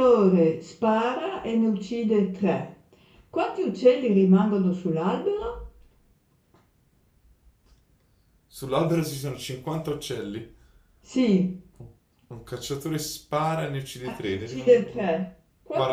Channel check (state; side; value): identical; both; correlation 1.00